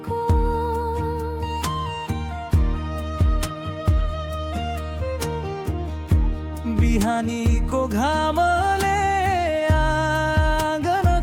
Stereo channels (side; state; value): both; identical; correlation 1.00